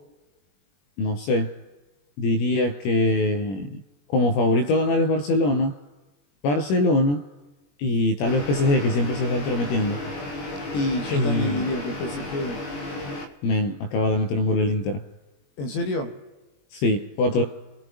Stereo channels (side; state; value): right; late; 21 ms